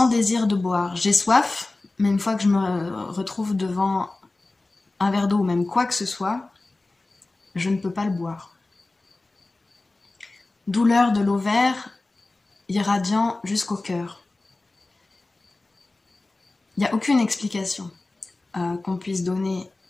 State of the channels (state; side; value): quieter; right; 3.1 dB